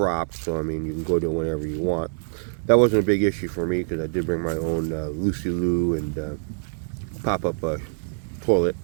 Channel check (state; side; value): silent; left; digital silence